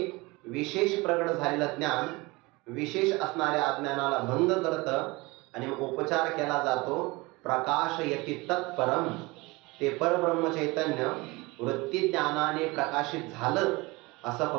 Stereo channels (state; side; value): quieter; left; 23.6 dB